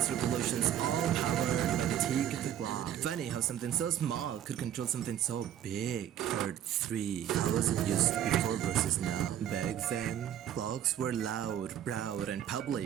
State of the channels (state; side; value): quieter; left; 10.6 dB